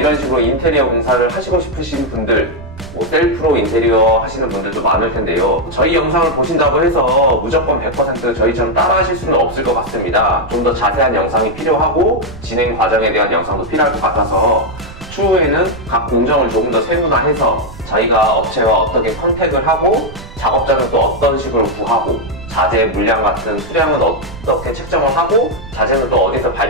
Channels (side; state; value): right; noise; rumble, 16 dB below the sound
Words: 식으로 인테리어 공사를 하시고 싶으신 분들 셀프로 인테리어 하시는 분들도 많을 텐데요. 저희 영상을 보신다고 해서 무조건 100% 저희처럼 따라 하실 수는 없을 것 같습니다. 좀 더 자세한 영상이 필요하고 진행 과정에 대한 영상도 필요할 것 같아서 추후에는 각 공정을 조금 더 세분화해서 저희가 업체와 어떻게 컨택을 하고 작업자는 또 어떤 식으로 구하고 자재 물량 같은 수량은 어떻게 책정을 하고 자재는 또 어디서